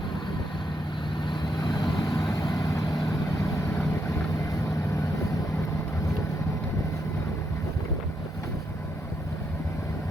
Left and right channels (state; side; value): normal; both; correlation 0.79